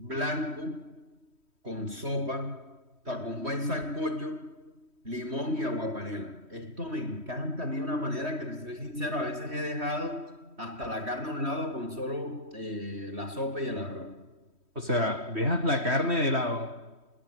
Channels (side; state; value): left; late; 3.1 ms